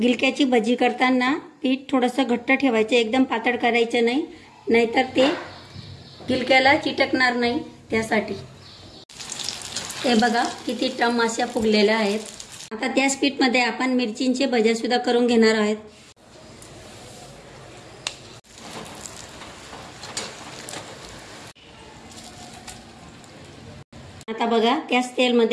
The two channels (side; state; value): both; identical; correlation 1.00